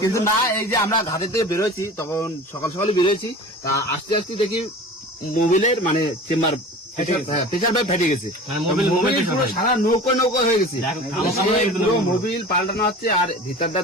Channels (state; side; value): normal; both; correlation 0.38